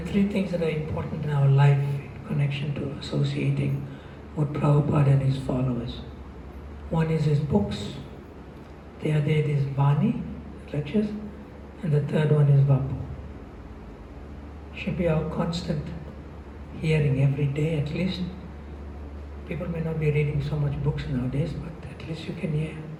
3 things that are important in our life in connection to associating with Prabhupada and his followers. One is his books. The other is Vani, lectures. And the third one is Vapu. Should be our constant hearing every day at least. People may not be reading so much books nowadays, but at least you can hear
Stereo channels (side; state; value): both; identical; correlation 1.00